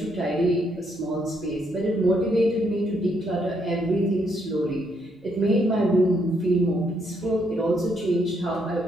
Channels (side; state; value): both; normal; correlation 0.74